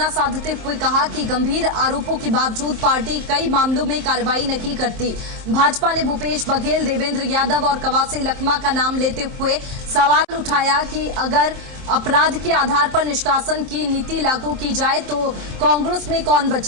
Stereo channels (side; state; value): left; late; 23 ms